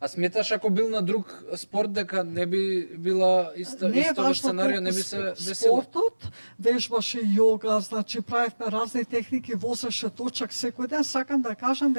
А сметаш ако бил на друг спорт дека не би била исто сценарио, не би се десило? Спортот, вежбаше јога, значи правевме разни техники, возеше точак секој ден. Сакам да кажам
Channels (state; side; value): inverted; both; correlation -1.00